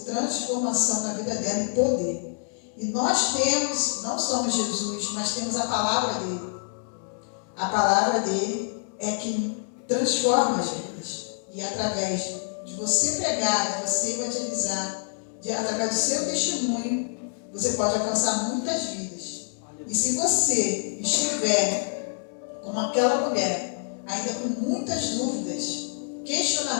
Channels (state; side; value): silent; right; digital silence